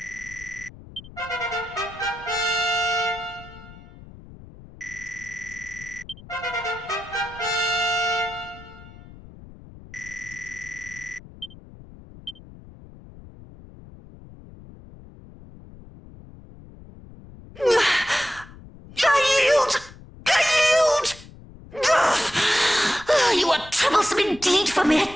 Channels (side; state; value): left; noise; rumble, 19 dB below the sound